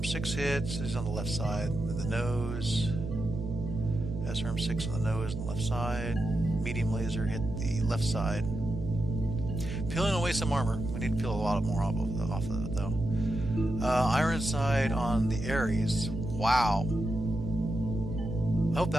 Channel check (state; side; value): noise; right; hum, 6 dB below the sound